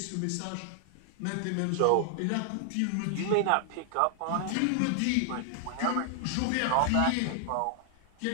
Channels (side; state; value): both; different; correlation 0.00